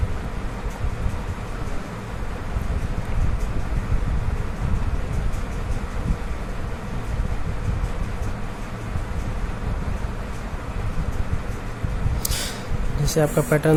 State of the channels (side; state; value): both; identical; correlation 1.00